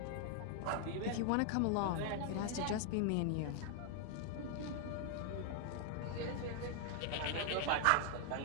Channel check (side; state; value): both; different; correlation 0.00